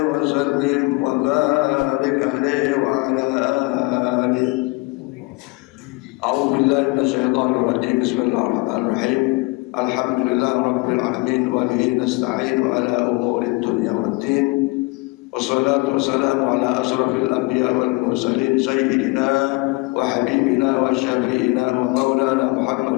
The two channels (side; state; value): right; quieter; 25.7 dB